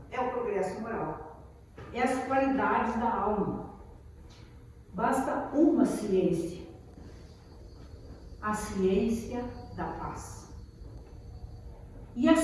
é o progresso moral. É as qualidades da alma. Basta uma ciência, a ciência da paz. E a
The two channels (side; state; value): both; identical; correlation 1.00